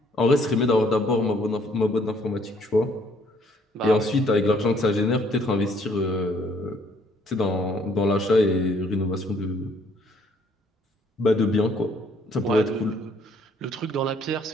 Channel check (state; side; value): normal; both; correlation 0.64